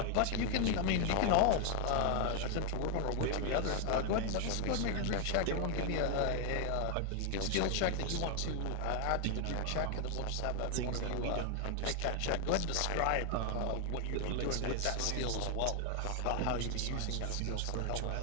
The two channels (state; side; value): different; both; correlation 0.00